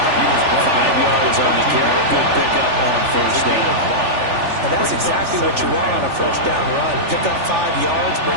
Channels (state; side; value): late; left; 3.4 ms